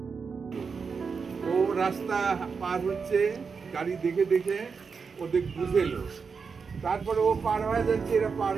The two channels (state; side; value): quieter; left; 5.4 dB